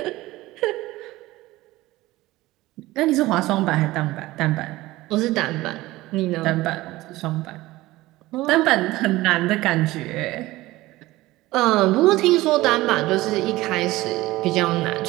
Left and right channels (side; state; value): left; quieter; 18.2 dB